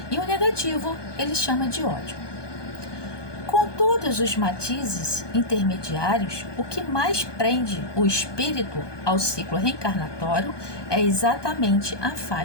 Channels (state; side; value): late; right; 1.2 ms